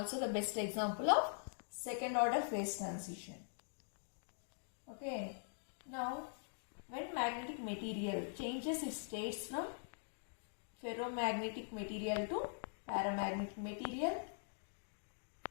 the best example of second order phase transition. Okay. Now, when magnetic material changes its states from ferromagnetic material to paramagnetic material,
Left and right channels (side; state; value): right; silent; digital silence